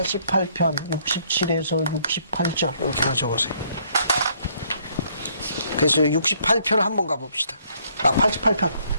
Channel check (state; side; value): inverted; both; correlation -0.66